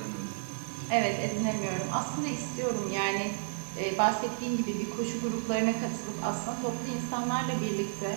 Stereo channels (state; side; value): silent; left; digital silence